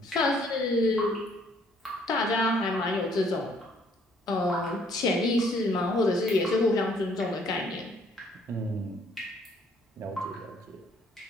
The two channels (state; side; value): normal; both; correlation 0.63